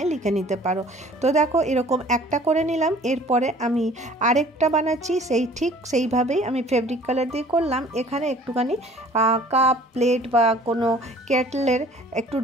লিখে নিতে পারো। তো দেখো এরকম একটা করে নিলাম। এরপরে আমি আরেকটা বানাচ্ছি, ঠিক সেইভাবেই আমি ফেব্রিক কালার দিয়ে করলাম। এখানে একটুখানি কাপ, প্লেট বা কোনো কেটলের একটু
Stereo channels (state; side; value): normal; both; correlation 0.51